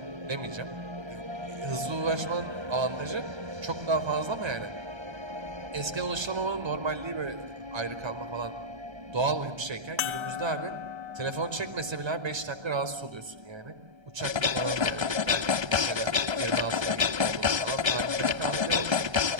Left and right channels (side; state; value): left; late; 1.3 ms